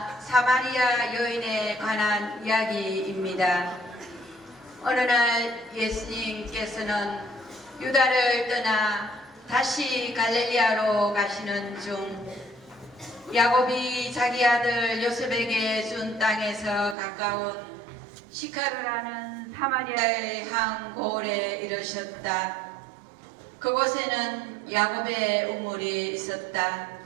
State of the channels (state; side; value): drops out; left; at 16.9 s